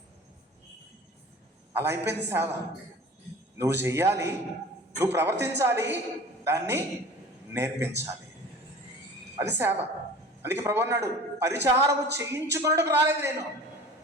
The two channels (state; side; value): normal; both; correlation 0.41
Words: అలా అయిపోయింది సేవ. నువ్వు చెయ్యాలి, నువ్వు ప్రవర్తించాలి, దాన్ని నేర్పించాలి. అది సేవ. అందుకే ప్రభు అన్నాడు, పరిచారము చేయించుకున్నట్టుకు రాలేదు నేను,